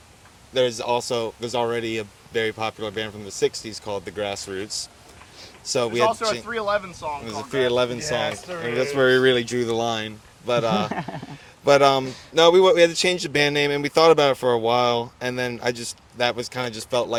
there's already a very popular band from the '60s called the Grassroots. So we had also a 311 song. There's a called 311 Yes, song, there and is. that's where we really drew the line. But no, we had to change the band name, and we thought about it for a while, and then that was kind of just felt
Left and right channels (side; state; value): both; identical; correlation 1.00